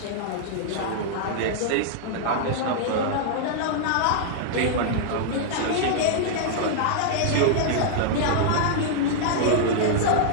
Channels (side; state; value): both; different; correlation -0.01